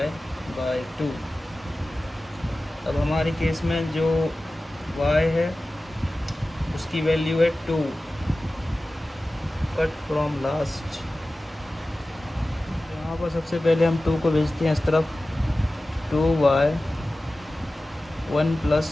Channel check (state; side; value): normal; both; correlation 0.96